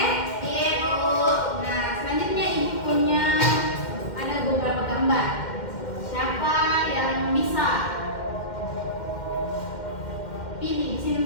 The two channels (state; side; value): late; right; 2.1 ms